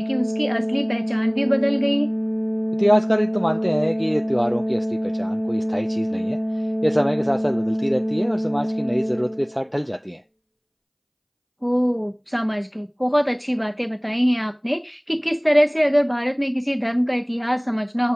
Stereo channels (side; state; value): both; identical; correlation 1.00